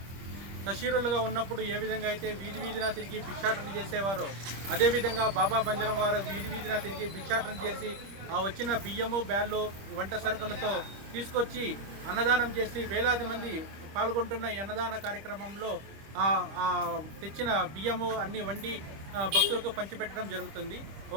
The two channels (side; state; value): left; late; 25 ms